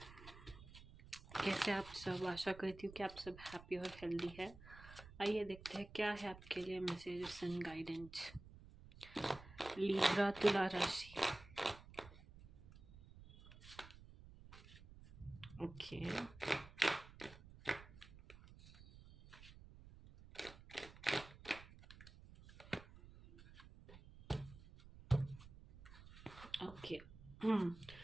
कैसे आप सब? आशा करती हूँ कि आप सब हैप्पी और हेल्दी है। आइए देखते हैं क्या है आपके लिए मैसेजेस एंड गाइडेंस। लिब्रा तुला राशि। Okay, okay.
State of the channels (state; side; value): noise; right; rumble, 18 dB below the sound